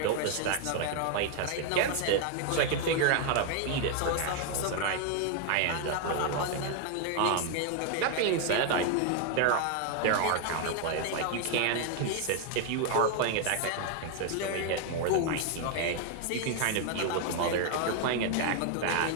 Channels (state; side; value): different; both; correlation 0.00